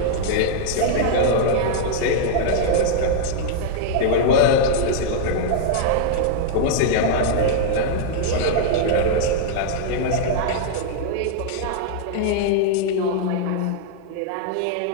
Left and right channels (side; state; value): both; different; correlation -0.01